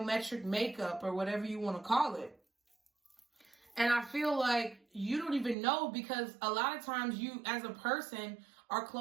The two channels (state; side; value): drops out; left; at 5.6 s